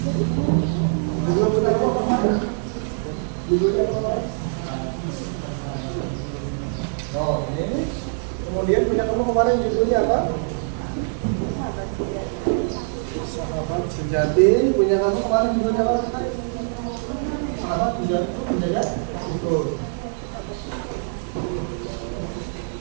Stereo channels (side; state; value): left; silent; digital silence